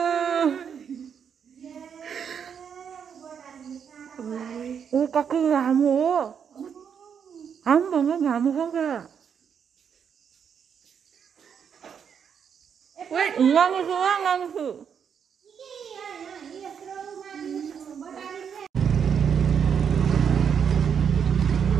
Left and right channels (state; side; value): quieter; left; 7.5 dB